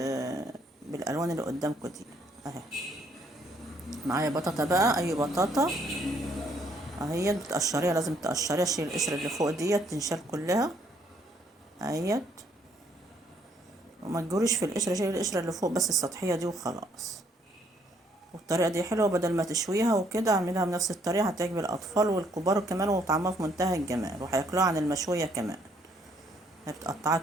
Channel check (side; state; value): both; normal; correlation 0.67